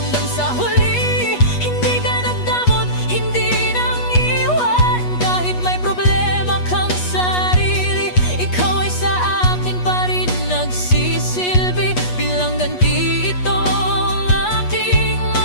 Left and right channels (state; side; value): late; right; 8.3 ms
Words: sa huli, hindi ka nagdamot, hindi nang iwan. Kahit may problema kang sarili, ikaw ay sa akin pa rin nagsisilbi. Bilang ganti ito ang aking